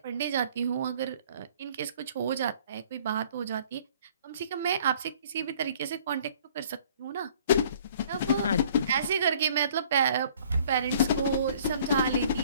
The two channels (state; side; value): inverted; both; correlation -0.55